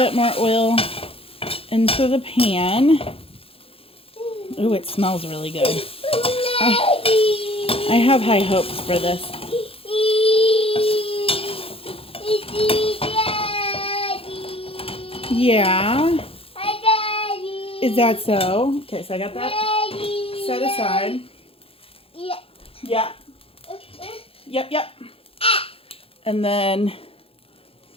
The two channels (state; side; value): late; right; 0.27 ms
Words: more oil into the pan. Ooh, it smells really good. I have high hopes for this. Yeah. Is that so? Okay, so I got that set aside. Yeah. Yep. And then